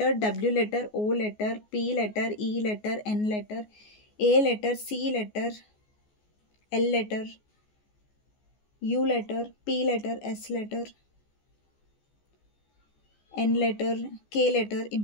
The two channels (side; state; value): right; late; 14 ms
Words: W letter, O letter, P letter, E letter, N letter, A letter, C letter, L letter, U letter, P letter, S letter, N letter, K letter